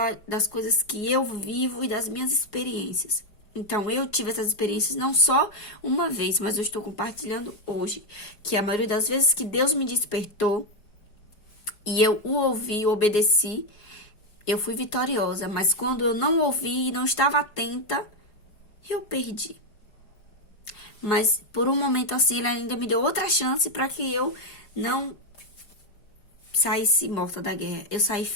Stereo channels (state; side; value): late; right; 4.8 ms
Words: das coisas que eu vivo e das minhas experiências. Então, eu tive essas experiências não só uma vez, mas eu estou compartilhando hoje. Que a maioria das vezes que Deus me despertou e eu o ouvi, obedeci, eu fui vitoriosa. Mas quando eu não ouvi e não estava atenta, eu perdi. Mas por um momento assim, ele ainda me deu outra chance para que eu não saísse morta da guerra. Eu saí